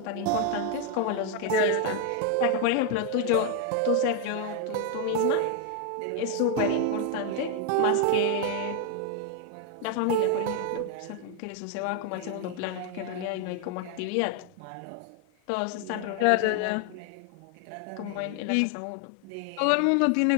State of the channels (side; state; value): both; different; correlation 0.01